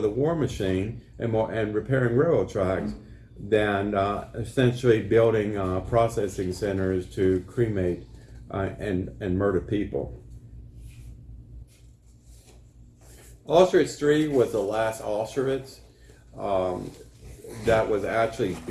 war machine and repairing railroad tracks than essentially building processing centers to cremate and murder people. Auschwitz III was the last Auschwitz that was actually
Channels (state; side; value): identical; both; correlation 1.00